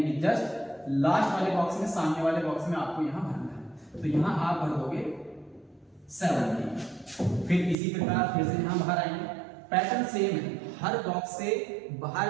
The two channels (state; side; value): drops out; left; at 7.8 s